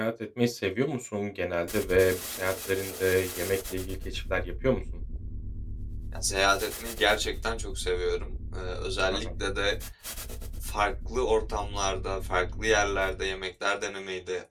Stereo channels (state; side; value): identical; both; correlation 1.00